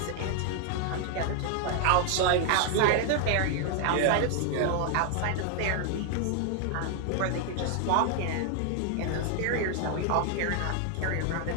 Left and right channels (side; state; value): both; different; correlation 0.00